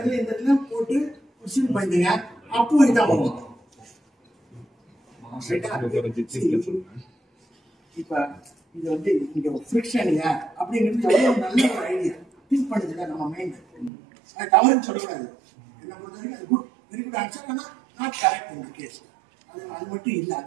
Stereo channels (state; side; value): drops out; left; at 13.9 s